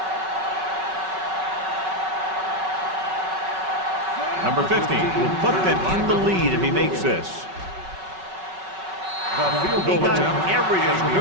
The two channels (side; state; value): left; late; 5.3 ms